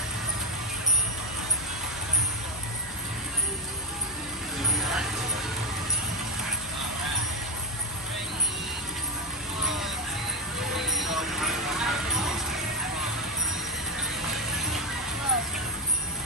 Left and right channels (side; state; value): left; noise; hum, 19 dB below the sound